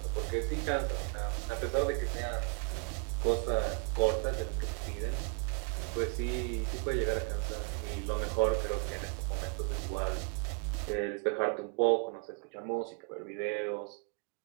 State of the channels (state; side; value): quieter; left; 37.1 dB